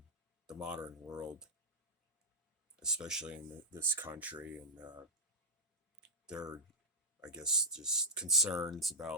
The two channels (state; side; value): normal; both; correlation -0.05